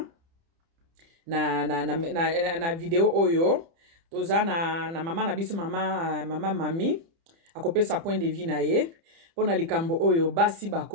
na video oyo toza na mama na biso mama mami akopesa point de vue na ye pona likambo oyo basi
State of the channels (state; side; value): late; left; 30 ms